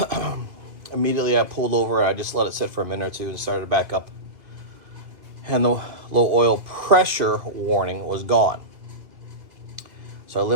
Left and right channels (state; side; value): late; left; 2.3 ms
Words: immediately I pulled over. I just let it sit for a minute or two and started back up. And the low oil pressure warning was gone. So I